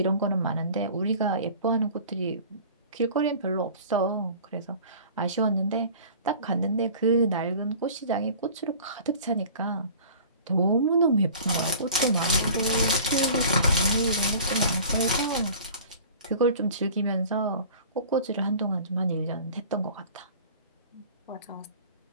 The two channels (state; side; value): inverted; both; correlation -0.44